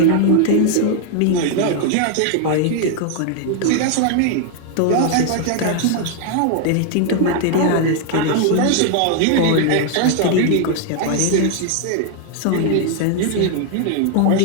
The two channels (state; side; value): different; both; correlation 0.00